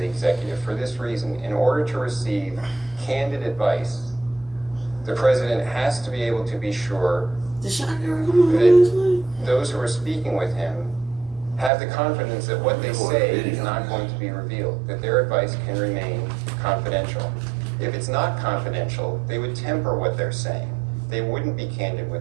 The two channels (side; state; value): left; drops out; at 11.7 s